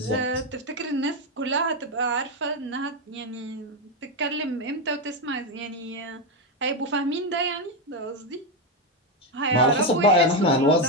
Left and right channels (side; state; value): both; normal; correlation 0.07